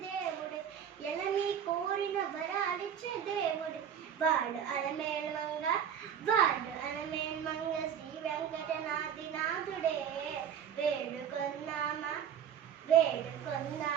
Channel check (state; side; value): quieter; left; 8.7 dB